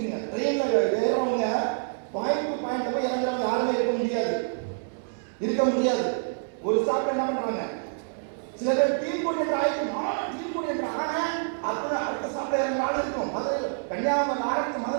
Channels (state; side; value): silent; left; 60 dB below the other